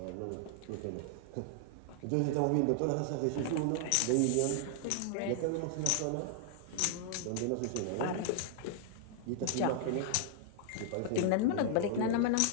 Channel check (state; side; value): different; both; correlation -0.01